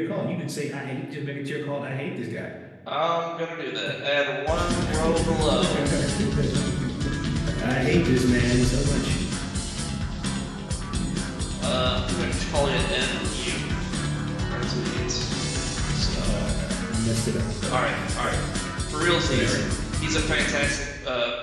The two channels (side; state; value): both; identical; correlation 1.00